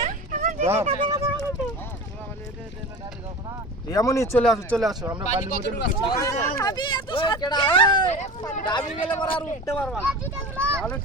এমনই চলে আসো চলে আসো, আমরা বালির মধ্যে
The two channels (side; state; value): both; normal; correlation 0.33